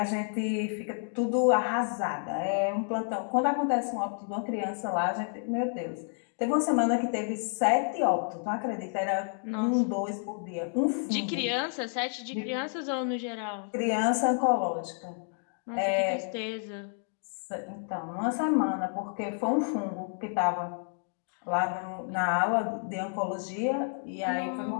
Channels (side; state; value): right; silent; 58 dB below the other